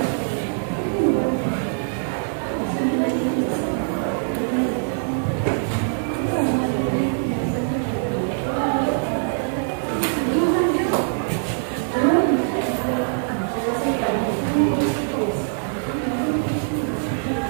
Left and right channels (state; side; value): silent; left; digital silence